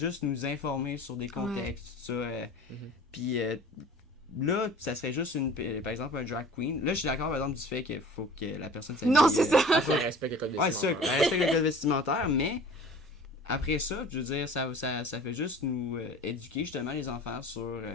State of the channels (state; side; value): normal; both; correlation 0.43